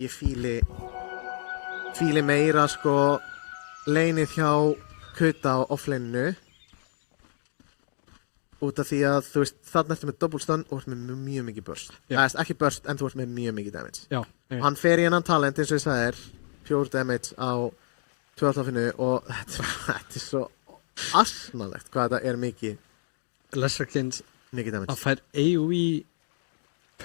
ég fíli meira, sko, laneið hjá Kuta á offlaneinu. Út af því að, þú veist, þarna ertu með double stun og ertu með mjög mikið burst. Ekki burst, en þú ert með mjög mikið damage. Já. Hann fer í hennan talent, eins og ég sagði þér, pure damage á 12-finu og þetta er svo asnalegt hvað þetta er mikið. Lesserkins Mikið damage. að fær AoE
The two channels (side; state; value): right; silent; digital silence